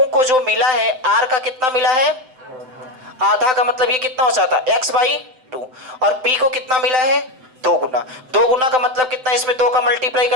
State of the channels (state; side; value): late; left; 7.8 ms